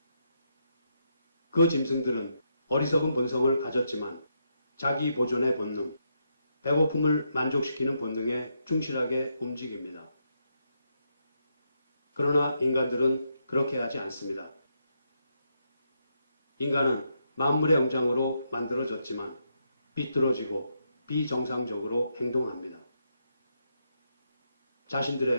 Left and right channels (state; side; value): inverted; both; correlation -0.80